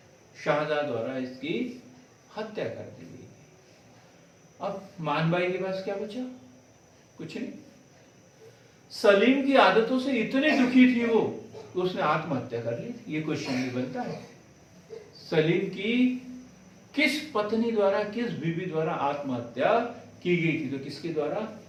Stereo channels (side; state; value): both; identical; correlation 1.00